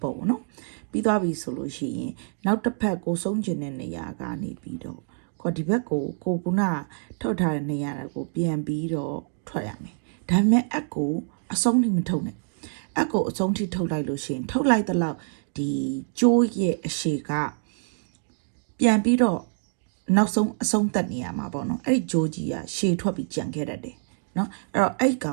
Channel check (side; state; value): left; silent; digital silence